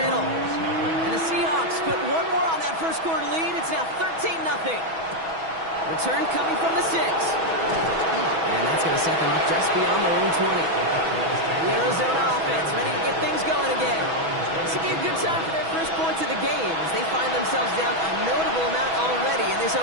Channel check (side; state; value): left; late; 6.1 ms